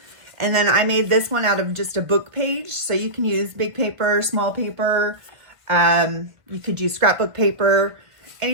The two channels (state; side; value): late; left; 1.6 ms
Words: and then I made this one out of just a book page, so you can use big paper, small paper. You could use scrapbook paper,